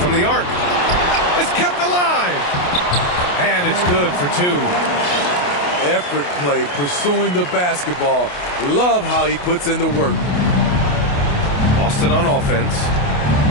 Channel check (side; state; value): right; late; 28 ms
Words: the arc. It's kept alive. And it's good for 2. Effort play, pursuing the basketball. Love how he puts in the work. Boston on offense.